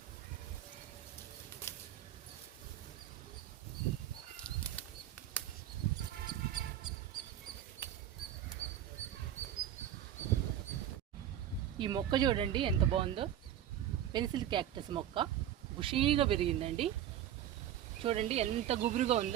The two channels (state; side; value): quieter; left; 11.1 dB